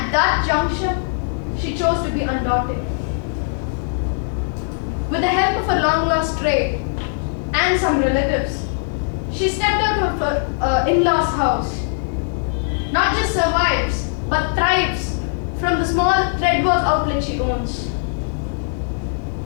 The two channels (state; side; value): silent; right; 65 dB below the other